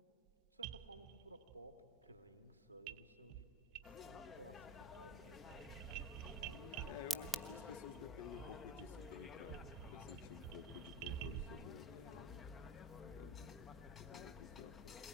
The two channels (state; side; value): normal; both; correlation 0.28